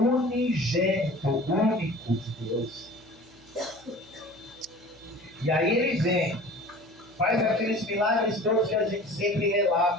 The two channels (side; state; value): right; noise; hum, 28 dB below the sound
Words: único de Deus. E aí ele vem, faz aqueles milagres todos que a gente sempre